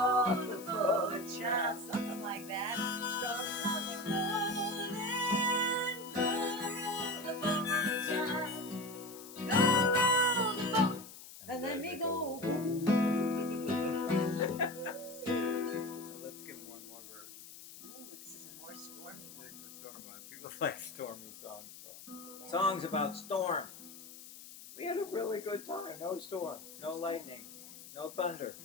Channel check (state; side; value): noise; left; hiss, 15 dB below the sound